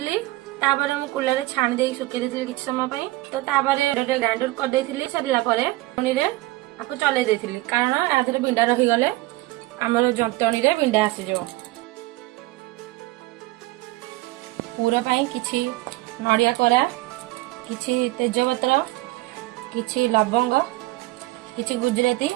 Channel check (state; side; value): quieter; left; 19.2 dB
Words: तापर हम कुलर छाणी दे सुखी देथिली किछ समय पई। तो तापर ग्राइंडर कर देथिली। सरला परे पुनी रे आपको चले देथिली कारण आधरे बिंडा रही गले हमर जंतणी रे बिंडा आसी जो। पूरा पई किछि नडिया कोरा, किछि तेजपत्र, किछि लवंग, किछि गुजराती,